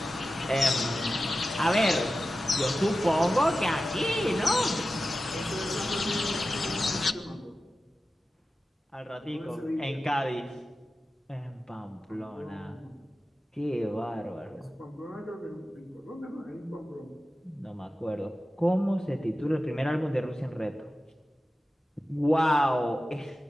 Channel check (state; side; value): normal; both; correlation 0.94